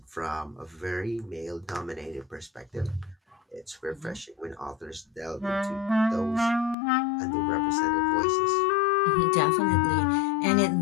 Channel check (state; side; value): drops out; right; at 6.8 s